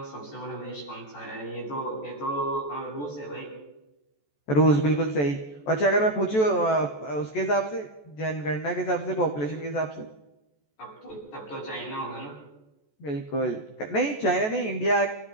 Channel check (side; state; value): right; late; 14 ms